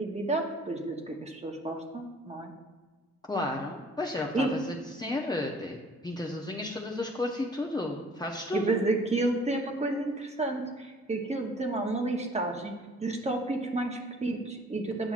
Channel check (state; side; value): normal; both; correlation 0.54